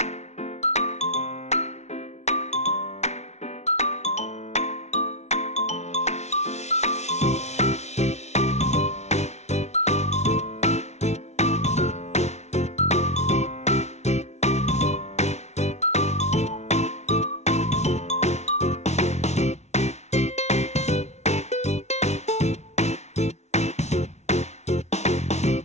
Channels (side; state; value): right; late; 0.32 ms